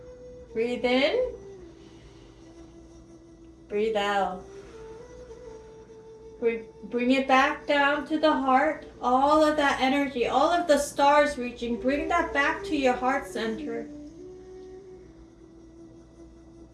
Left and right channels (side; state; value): both; identical; correlation 1.00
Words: Breathe in. Breathe out. Bring it back down to the heart. All of that energy, all of the stars reaching, bring that back to your heart center.